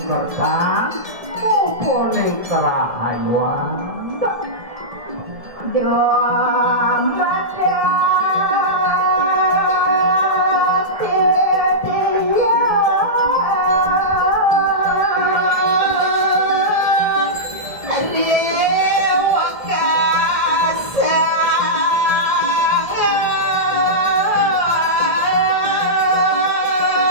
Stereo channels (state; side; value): late; left; 1.7 ms